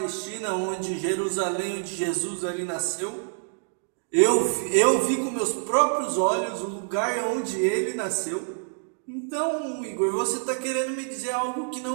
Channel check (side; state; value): left; silent; digital silence